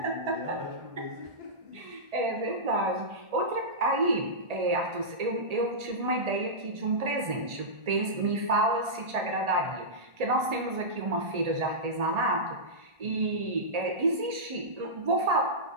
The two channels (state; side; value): late; left; 1.8 ms